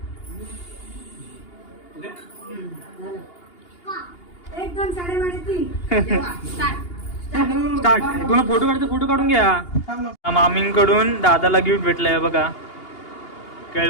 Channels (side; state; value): right; late; 2.8 ms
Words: एक दोन 3:30 3. स्टार्ट. तुला फोटो काढतो, फोटो काढून घ्या. थांब ना. मामींकडून दादाला गिफ्ट भेटलंय बघा,